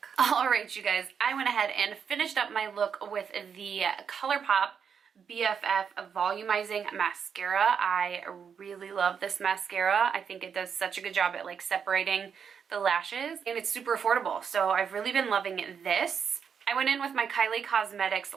Alright, you guys, I went ahead and finished up my look with the ColourPop BFF Volumizing Mascara. I really love this mascara. I think it does such a good job at like separating the lashes, and it's super affordable. So I've really been loving this. I went in with my Kylie Cosmetics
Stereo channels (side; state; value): left; quieter; 6.9 dB